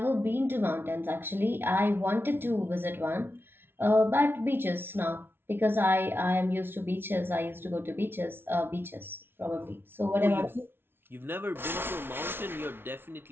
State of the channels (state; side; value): late; left; 0.11 ms